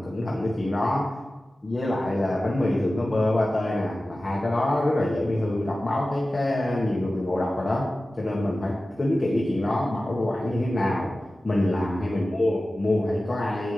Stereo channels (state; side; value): normal; both; correlation 0.96